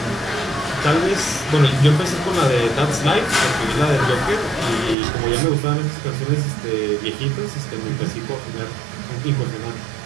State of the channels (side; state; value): left; drops out; at 5.0 s